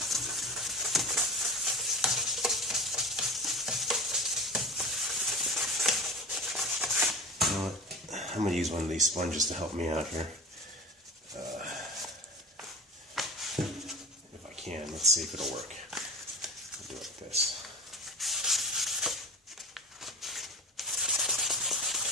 I'm going to use one of these sponges to help me out here. If I can, let's see if it'll work. I'll do it like this.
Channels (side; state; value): both; normal; correlation 0.33